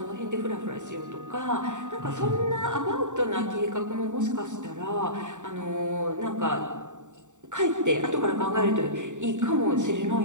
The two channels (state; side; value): late; left; 0.85 ms